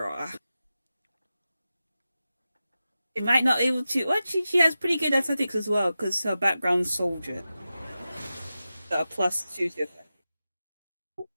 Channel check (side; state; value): both; inverted; correlation -0.93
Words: She might not be able to. Well, she has pretty good athletics as well because her background's soldier. So a +2 to attack.